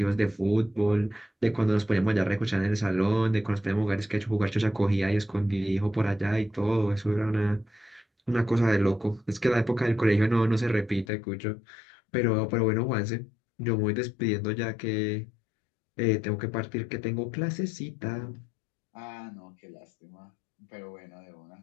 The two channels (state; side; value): drops out; right; at 11.1 s